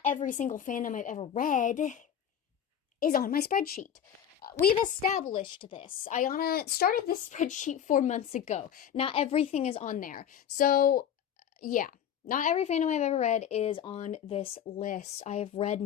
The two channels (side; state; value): right; quieter; 9.2 dB